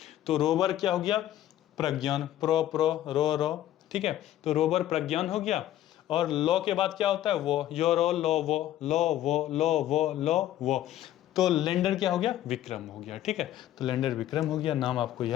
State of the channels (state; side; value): quieter; right; 12.9 dB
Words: तो रोवर क्या हो गया, प्रज्ञान, प्रो प्रो रो रो, ठीक है। तो रोवर प्रज्ञान हो गया, और लो के बाद क्या होता है, वो, यो रो लो वो, लो वो, लो वो, लो वो, तो लैंडर क्या हो गया, विक्रम हो गया, ठीक है। तो लैंडर विक्रम हो गया, नाम आपको